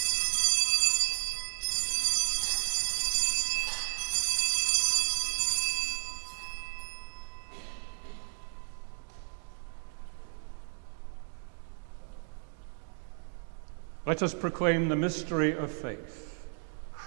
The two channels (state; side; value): silent; left; 56 dB below the other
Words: Let us proclaim the mystery of faith.